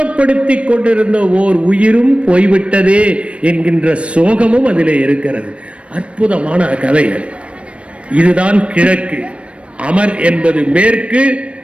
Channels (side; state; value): left; late; 0.061 ms